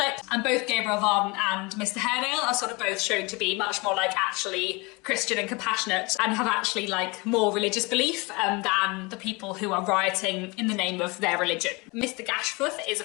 and both Gabriel Varden and Mr. Haredale are sort of both shown to be much more like actually Christian and compassionate and have actually like more religious belief than the people who are rioting in the name of their religion. Mr. Gashforth is a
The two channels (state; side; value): quieter; right; 26.5 dB